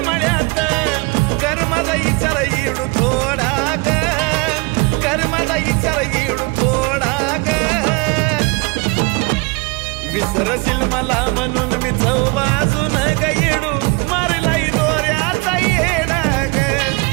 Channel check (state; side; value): quieter; left; 28.2 dB